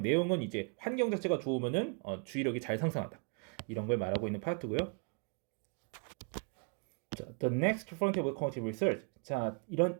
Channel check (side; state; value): left; quieter; 37.7 dB